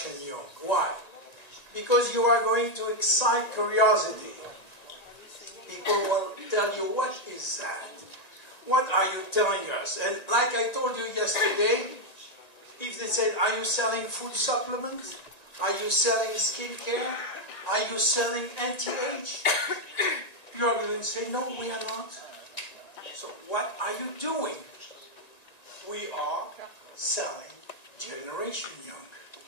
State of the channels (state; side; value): late; right; 1.9 ms